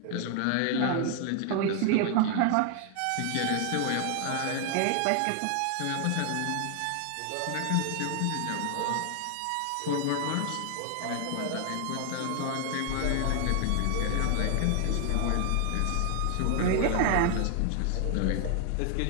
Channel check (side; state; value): both; different; correlation 0.00